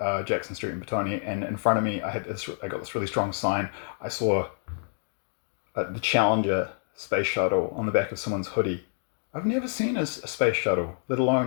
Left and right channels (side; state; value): right; silent; digital silence